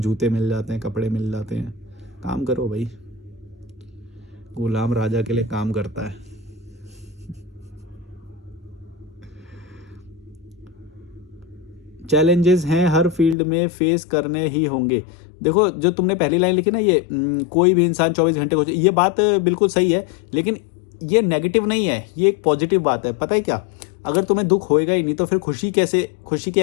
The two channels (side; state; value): right; drops out; at 13.4 s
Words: मिल जाते हैं, कपड़े मिल जाते हैं। काम करो भाई, गुलाम राजा के लिए काम करता है। चैलेंजेस हैं हर फील्ड में, फेस करने ही होंगे। देखो जो तुमने पहली लाइन लिखी ना, ये कोई भी इंसान 24 घंटे को, ये बात बिल्कुल सही है, लेकिन ये नेगेटिव नहीं है, ये एक पॉजिटिव बात है। पता है क्या, अगर तुम्हें दुख होएगा ही नहीं तो फिर खुशी की